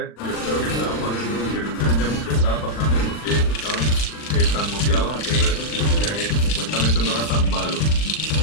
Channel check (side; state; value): right; late; 39 ms